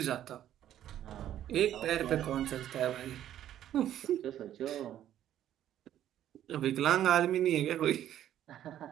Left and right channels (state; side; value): quieter; left; 11.5 dB